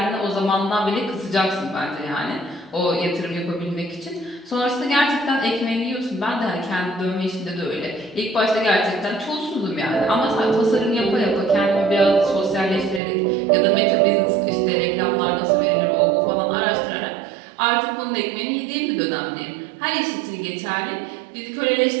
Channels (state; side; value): drops out; left; at 13.0 s